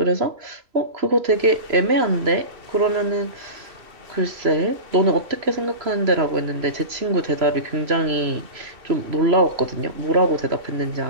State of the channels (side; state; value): left; late; 3.0 ms